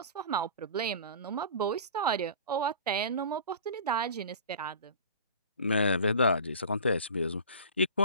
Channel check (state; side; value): inverted; both; correlation -0.39